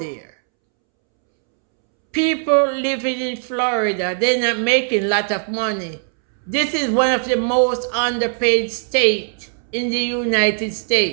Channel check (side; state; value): left; silent; 66 dB below the other